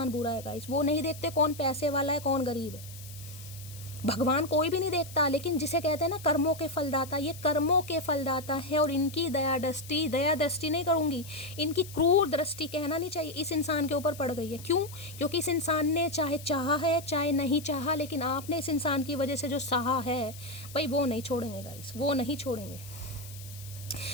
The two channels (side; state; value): left; noise; hiss, 16 dB below the sound